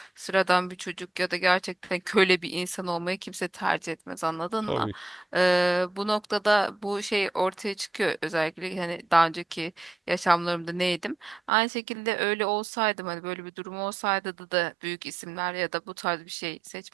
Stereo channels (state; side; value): drops out; left; at 11.5 s